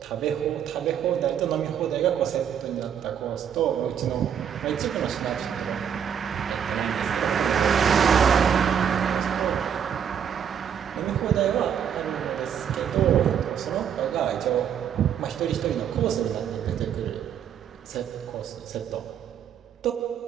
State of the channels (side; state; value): left; quieter; 8.4 dB